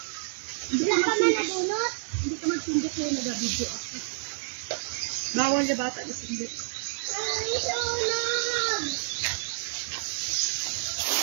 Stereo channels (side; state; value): left; silent; digital silence